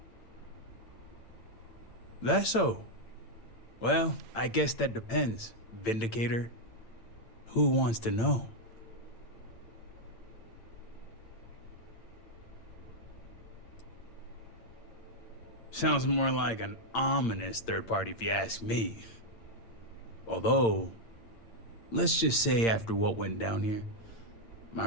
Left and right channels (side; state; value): right; late; 8.8 ms